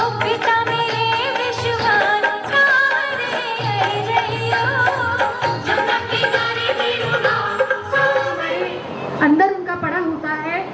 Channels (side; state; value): both; identical; correlation 1.00